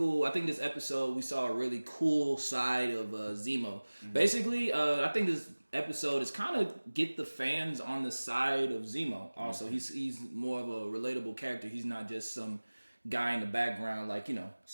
I think this episode we saw a really cool side of Zemo. Basically I think this episode is kind of get the fans on the side of Zemo. Also he's more of a relatable character. He's not just some guy in the background like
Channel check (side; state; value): both; inverted; correlation -1.00